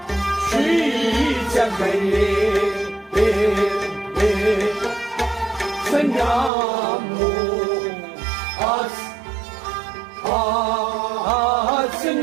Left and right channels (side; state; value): left; drops out; at 6.5 s